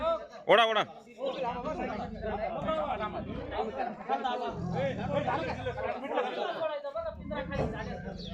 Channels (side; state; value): both; identical; correlation 1.00